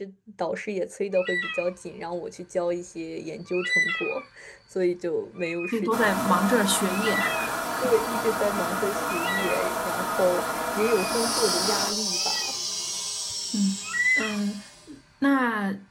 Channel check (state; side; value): identical; both; correlation 1.00